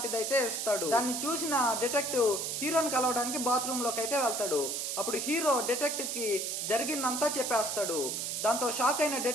అయితే ఇస్తాడు. దాన్ని చూసిన డిటెక్టివ్ హీరోని కలవడానికి బాత్రూమ్ లోకి అయితే వెళ్తాడు. అప్పుడు హీరో డిటెక్టివ్ కి జరిగిందంతా చెప్పేస్తాడు. దాంతో షాక్ అయిన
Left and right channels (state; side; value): noise; right; hiss, 2 dB below the sound